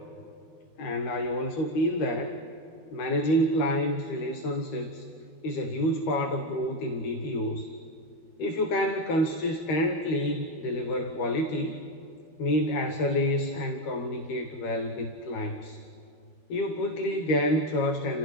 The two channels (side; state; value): right; late; 13 ms